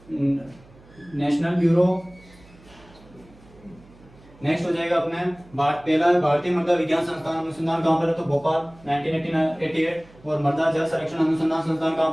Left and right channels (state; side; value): noise; right; hum, 25 dB below the sound